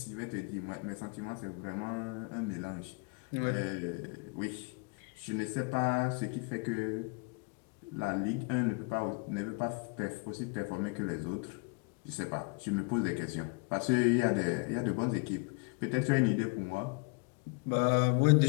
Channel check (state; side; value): quieter; right; 31.4 dB